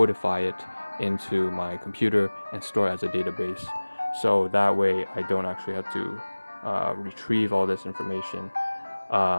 it into my computer and store it as a database. So that way I don't actually have to retrieve all this information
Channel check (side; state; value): both; inverted; correlation -1.00